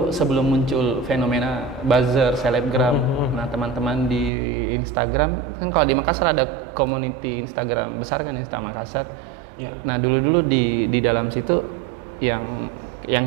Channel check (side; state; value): left; drops out; at 4.3 s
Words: sebelum muncul fenomena buzzer selebgram. Nah, teman-teman di Instagram kan kalau di Makassar ada community Instagram besar kan, Insta Makassar. Ya. Nah, dulu di dalam situ yang